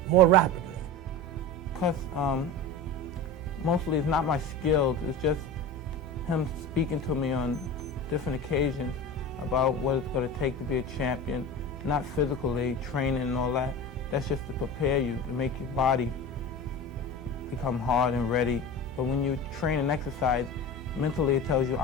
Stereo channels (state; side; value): normal; both; correlation 0.30